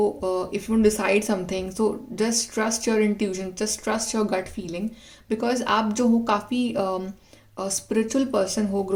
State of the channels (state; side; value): identical; both; correlation 1.00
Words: if you decide something, so just trust your intuition, just trust your gut feeling. Because आप जो हो काफ़ी स्पिरिचुअल पर्सन हो.